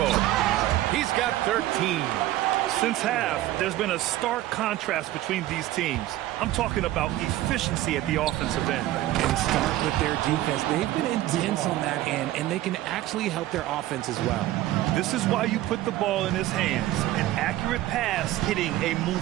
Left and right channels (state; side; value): quieter; left; 15.1 dB